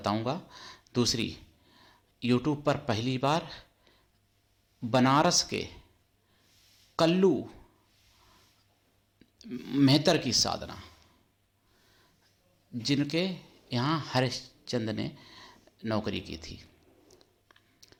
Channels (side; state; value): both; identical; correlation 1.00